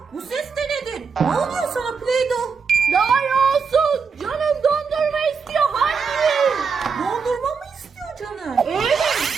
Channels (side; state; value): left; quieter; 5.6 dB